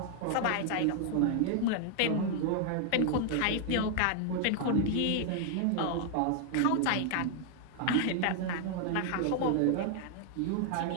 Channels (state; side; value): different; both; correlation 0.00